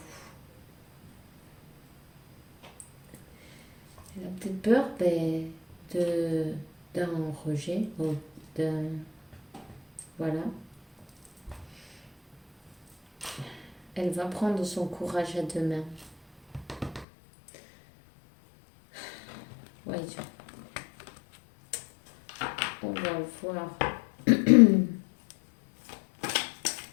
Elle a peut-être peur d'un rejet, ou d'un... Voilà. Elle va prendre son courage à deux mains. Voyons. On va voir.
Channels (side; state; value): right; drops out; at 17.1 s